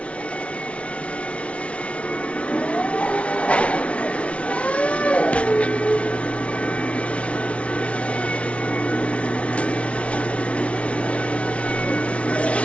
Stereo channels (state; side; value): late; right; 0.062 ms